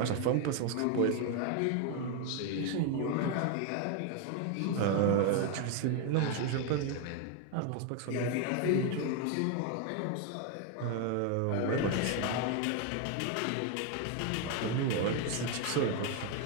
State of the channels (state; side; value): different; both; correlation 0.01